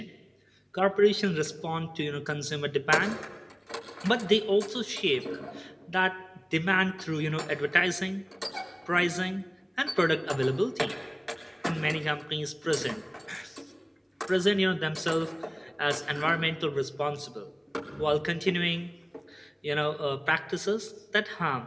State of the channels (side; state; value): both; identical; correlation 1.00